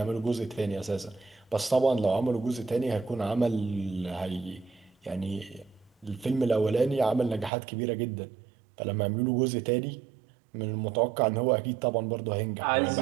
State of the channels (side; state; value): left; drops out; at 7.5 s